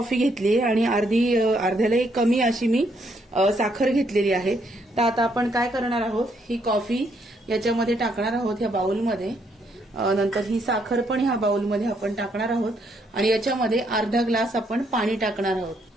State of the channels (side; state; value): both; normal; correlation 0.73